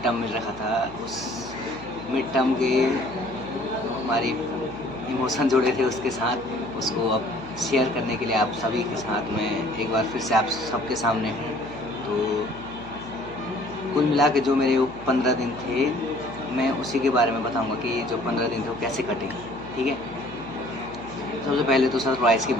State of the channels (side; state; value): right; noise; hum, 17 dB below the sound